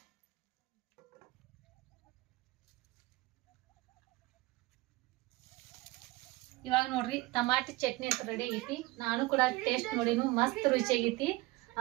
ಇವಾಗ ನೋಡ್ರಿ ಟಮಾಟಿ ಚಟ್ನಿ ಅಂತ ರೆಡಿ ಆಗೈತಿ. ನಾನು ಕೂಡ ಟೇಸ್ಟ್ ನೋಡಿನು, ಮಸ್ತ್ ರುಚಿ ಆಗೈತಿ.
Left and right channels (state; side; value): quieter; left; 21.0 dB